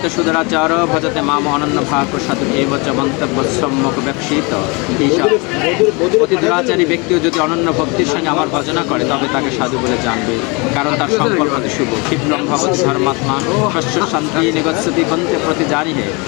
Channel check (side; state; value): right; quieter; 28.9 dB